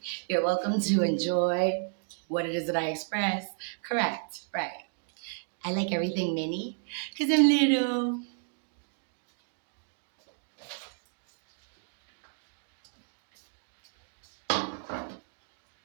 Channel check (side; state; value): left; silent; 56 dB below the other